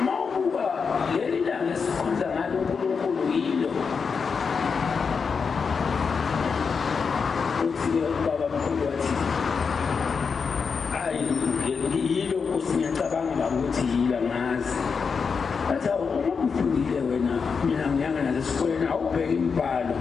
mawubuka leli langa esikhonza ngalo uNkulunkulu yilo. Uthi ubabamkhulu wathi hayi, yilo Nkosi, ngiyacabanga ukuthi yilo, angazi. Bathi hawu, uma ufundile wena, mina ngiyanga nasesikoleni, awubheke imibhalo.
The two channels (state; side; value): quieter; right; 5.6 dB